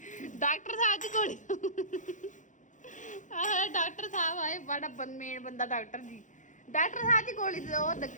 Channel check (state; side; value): late; right; 0.36 ms